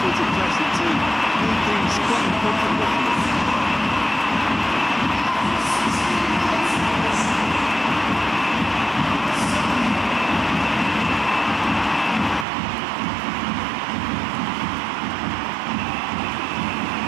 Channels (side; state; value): left; drops out; at 12.5 s